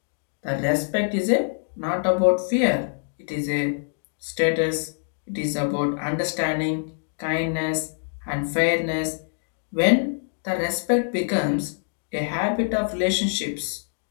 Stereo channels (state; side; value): silent; right; digital silence